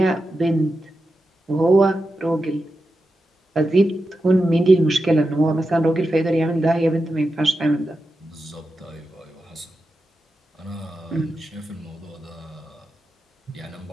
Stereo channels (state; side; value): normal; both; correlation 0.90